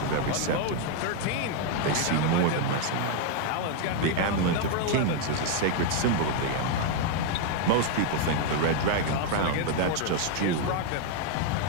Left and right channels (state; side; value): different; both; correlation 0.00